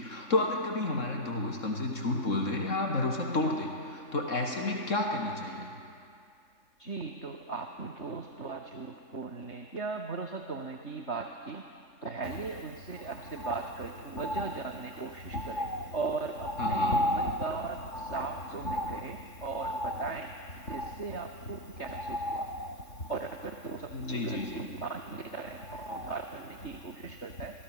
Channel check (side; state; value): right; late; 3.5 ms